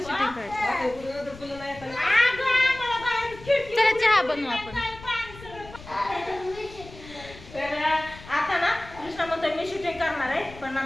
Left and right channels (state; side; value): noise; left; rumble, 18 dB below the sound